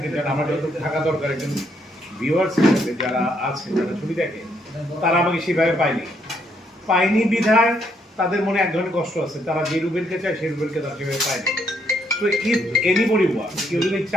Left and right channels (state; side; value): normal; both; correlation 0.72